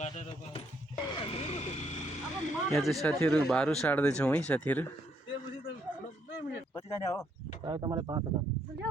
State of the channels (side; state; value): both; normal; correlation 0.72